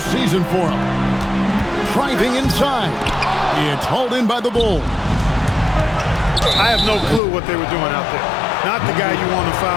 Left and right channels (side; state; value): right; drops out; at 7.2 s